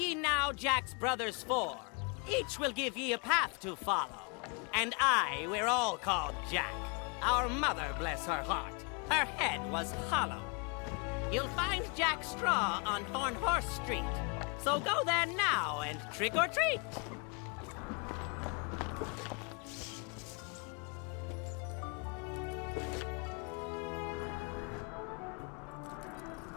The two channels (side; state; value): right; quieter; 33.4 dB